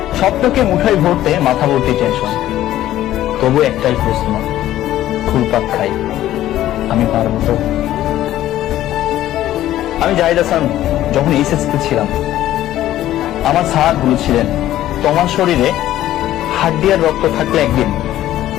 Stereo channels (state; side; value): quieter; right; 13.5 dB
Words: স্বপ্নকে মুঠোয় ভরতে মাথা ভর্তি টেনশন। তবু একটাই প্রশ্ন, ঘুরপাক খাই, আমি পারবো তো? আমি জাহিদ হাসান যখন এইচএসসি ছিলাম, আমার স্যার বলেছিলেন তোমার শরীরে হাড্ডি আর রক্ত থাকলে একদিন